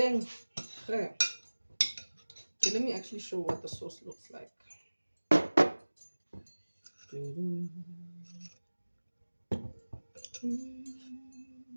Okay, let me actually show what the sauce looks like.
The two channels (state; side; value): inverted; both; correlation -1.00